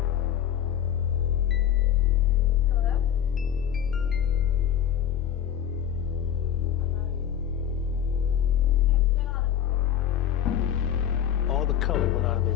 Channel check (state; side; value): quieter; right; 9.8 dB